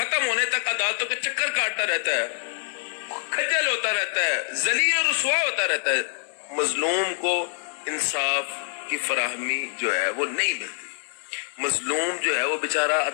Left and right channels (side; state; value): right; silent; digital silence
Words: ہونے تک عدالتوں کے چکر کاٹتا رہتا ہے, خجل ہوتا رہتا ہے, ذلیل اور رسوا ہوتا رہتا ہے. مظلوم کو انصاف کی فراہمی جو ہے وہ نہیں ملتی. مظلوم جو ہے وہ بیچارہ